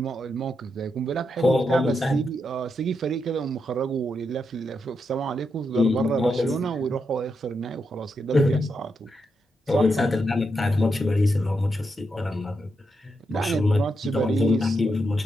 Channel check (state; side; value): normal; both; correlation 0.83